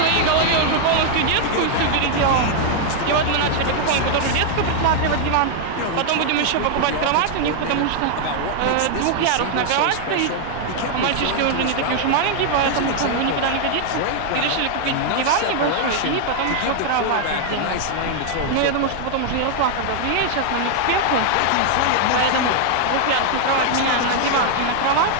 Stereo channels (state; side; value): different; both; correlation 0.00